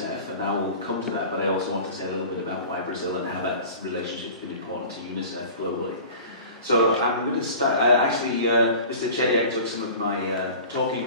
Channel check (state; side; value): inverted; both; correlation -0.40